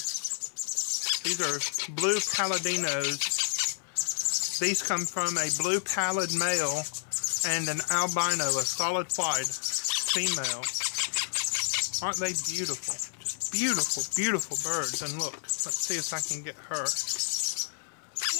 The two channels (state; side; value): silent; right; 58 dB below the other